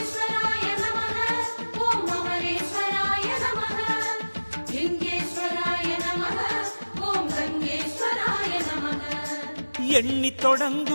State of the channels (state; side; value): inverted; both; correlation -1.00